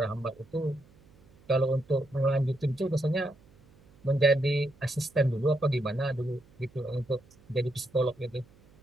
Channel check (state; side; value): noise; right; hum, 28 dB below the sound